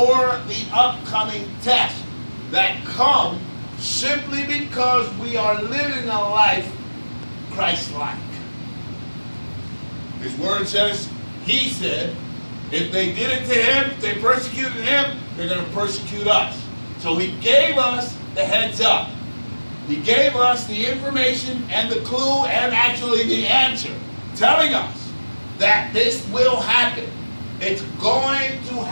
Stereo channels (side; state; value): both; inverted; correlation -1.00